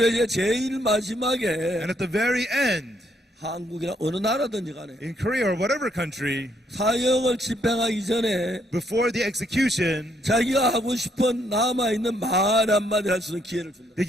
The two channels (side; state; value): both; normal; correlation 0.72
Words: 이제 제일 마지막에 And at the very end, 한국이나 어느 나라든지 간에 in Korea or whatever country, 사형을 집행하기 전에 before the execution, 자기가 하고 싶은 남아있는 말 한마디 할 수 있는 기회를 준다. they